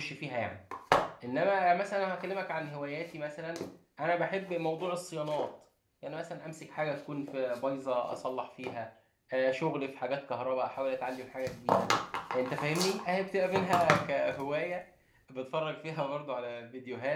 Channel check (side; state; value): both; identical; correlation 1.00